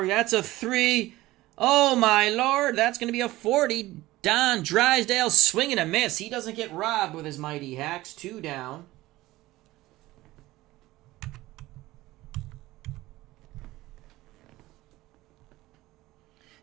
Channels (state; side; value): quieter; left; 17.7 dB